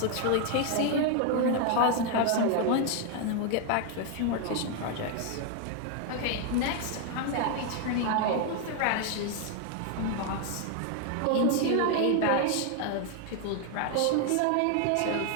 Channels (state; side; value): different; both; correlation 0.00